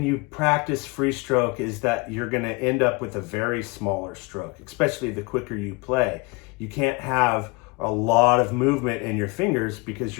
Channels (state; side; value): quieter; right; 27.6 dB